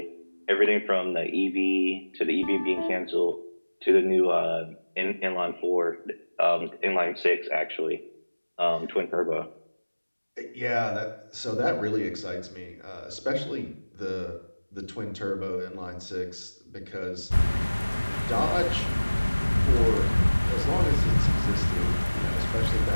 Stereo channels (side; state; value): both; inverted; correlation -1.00